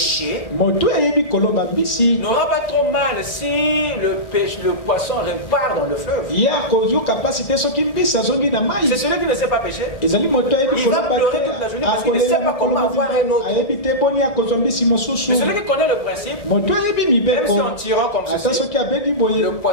n'aura pas trop mal si le poisson repart dans le fleuve. C'est celui qui ne sait pas pécher. Il va pleurer toute la journée parce qu'il ne sait pas comment avoir un autre. Mais celui qui connaît le principe, même si en tirant comme ceci, le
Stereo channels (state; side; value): late; right; 1.7 ms